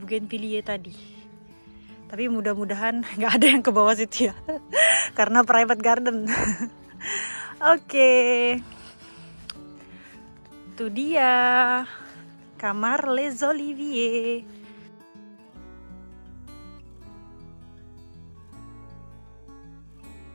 tadi. Tapi mudah-mudahan nggak ada yang ke bawah situ ya, karena private garden. Oke. Itu dia kamar Les Oliviers.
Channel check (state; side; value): inverted; both; correlation -1.00